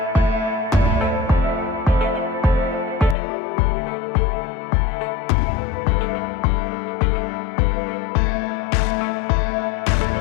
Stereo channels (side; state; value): right; drops out; at 3.2 s